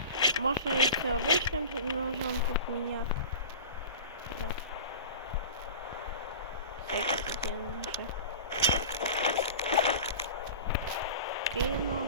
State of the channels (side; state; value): both; inverted; correlation -0.34